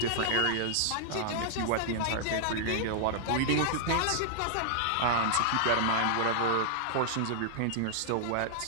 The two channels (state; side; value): different; both; correlation -0.01